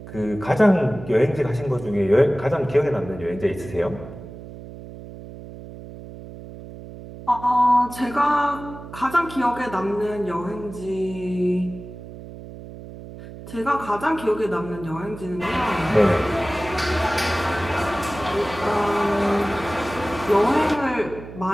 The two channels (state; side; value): noise; right; hum, 14 dB below the sound